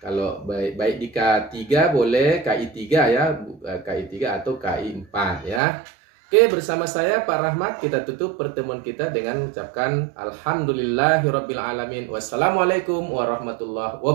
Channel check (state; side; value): drops out; left; at 5.6 s